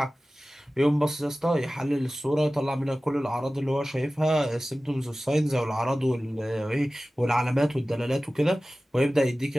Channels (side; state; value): both; normal; correlation 0.97